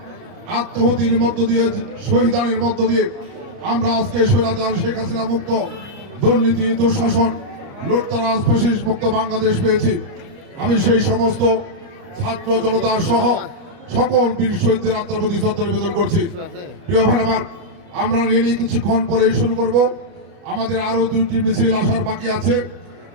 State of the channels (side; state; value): left; late; 29 ms